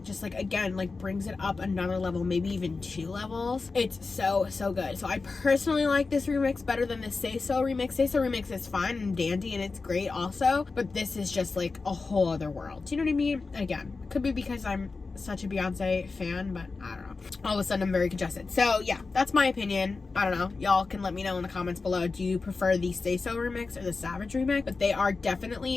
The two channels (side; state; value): right; quieter; 4.1 dB